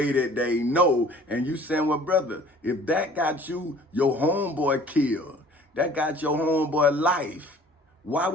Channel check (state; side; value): normal; both; correlation 0.50